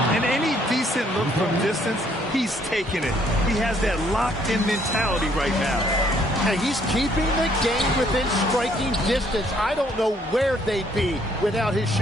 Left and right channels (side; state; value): both; normal; correlation 0.66